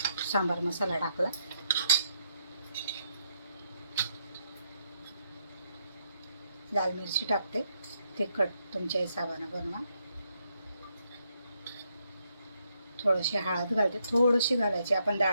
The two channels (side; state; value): both; inverted; correlation -0.78